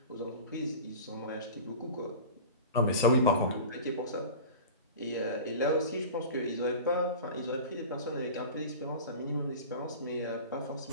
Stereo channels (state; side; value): inverted; both; correlation -0.35